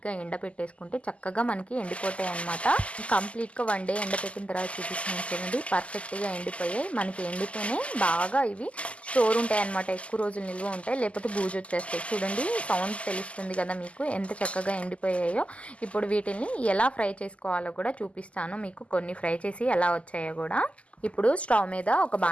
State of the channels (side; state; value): right; late; 0.061 ms